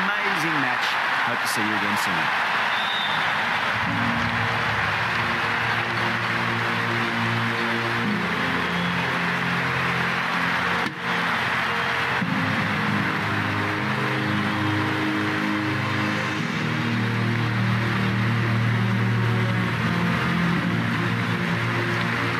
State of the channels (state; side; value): identical; both; correlation 1.00